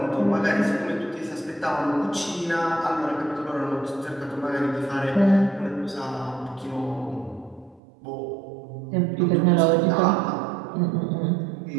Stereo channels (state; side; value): drops out; left; at 7.8 s